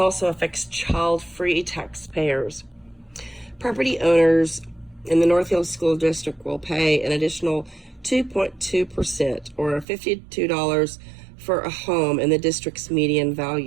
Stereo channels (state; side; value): drops out; left; at 9.9 s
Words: affects child-free taxpayers. Property owners in the North Hills School District will pay an additional 2.2%, or $52 for a home in the district's median